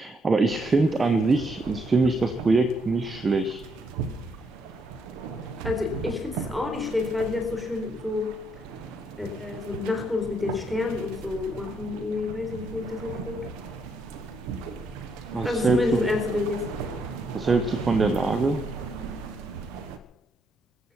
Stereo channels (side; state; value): both; normal; correlation 0.74